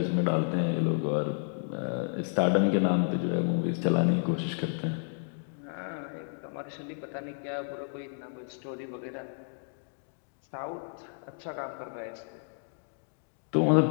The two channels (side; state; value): right; silent; digital silence